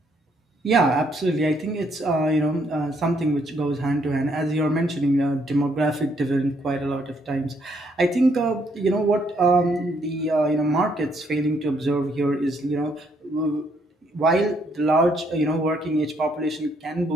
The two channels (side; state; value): both; normal; correlation 0.71